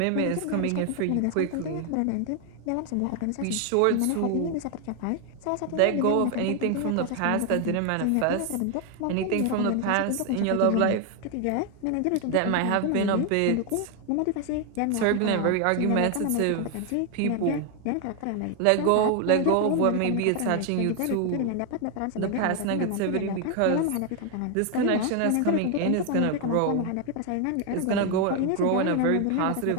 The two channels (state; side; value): different; both; correlation 0.01